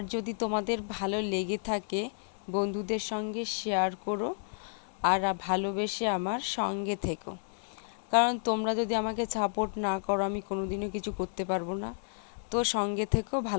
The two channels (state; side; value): silent; right; digital silence